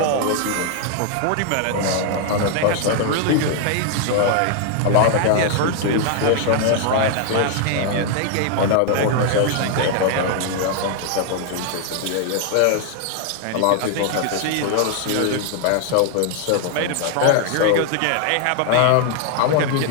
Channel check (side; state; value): both; different; correlation 0.00